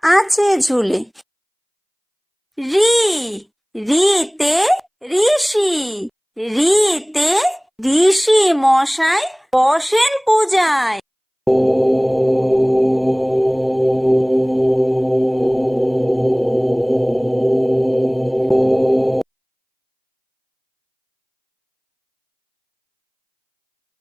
আছে ঝুলে। রি, রিতে ঋষি, রিতে ঋষি মশাই বসেন পূজায়।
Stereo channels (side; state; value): both; identical; correlation 1.00